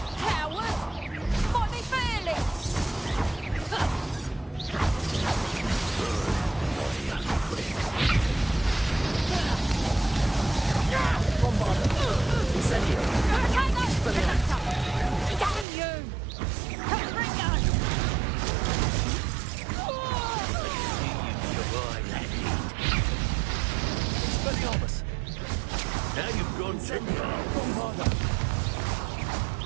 Coward! Might be fearless! Bombarda. Incendio. Expelliarmus. Damn you! Confringo! Expelliarmus. Now you've gone too far. Bombarda.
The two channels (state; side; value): drops out; left; at 15.7 s